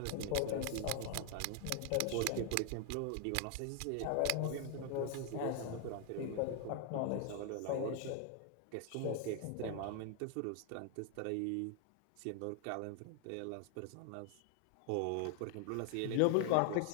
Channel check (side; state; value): both; different; correlation 0.00